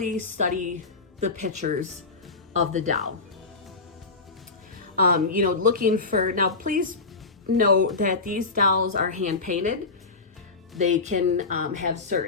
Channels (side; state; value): right; quieter; 3.8 dB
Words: study the pictures of the doll. You know, looking for, now please know that these dolls are hand painted. They can have